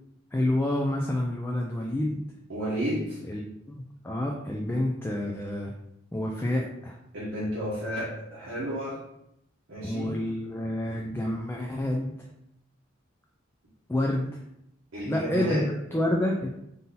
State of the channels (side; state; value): both; normal; correlation 0.79